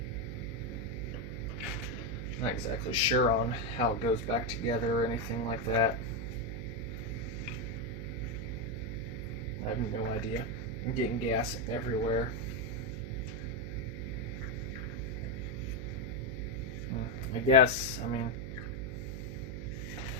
Not exactly sure on how it goes back together or anything like that. I have no idea. I'm getting gas everywhere. I guess, I mean,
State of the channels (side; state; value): right; noise; hum, 6 dB below the sound